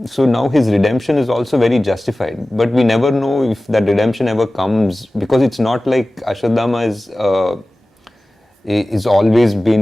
So now his redemption is also very justified. But we never know if that redemption ever comes because it's not like Ashwatthama is always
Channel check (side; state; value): both; normal; correlation 0.97